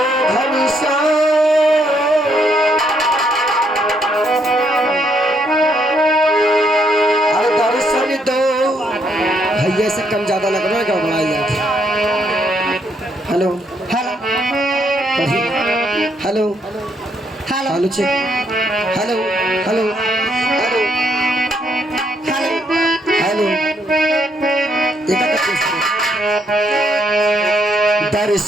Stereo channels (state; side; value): normal; both; correlation 0.73